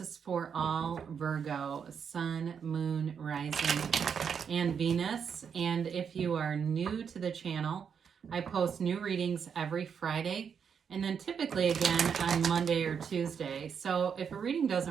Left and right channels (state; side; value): quieter; left; 7.0 dB